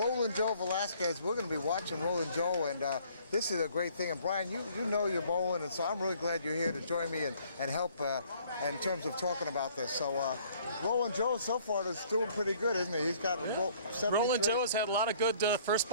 Joe Velasquez. We're going to be watching Rollin Joe, and this is a great thing. And Brian, you know you're bowling, and so I'm really glad you're here to join me and help in terms of talking about this. So Rollin Joe so far is doing pretty good, isn't he? He's got a 73. Rollin Joe has had a lot of good first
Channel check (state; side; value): inverted; both; correlation -0.59